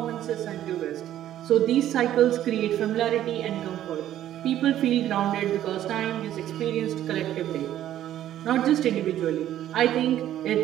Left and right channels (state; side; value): quieter; left; 12.1 dB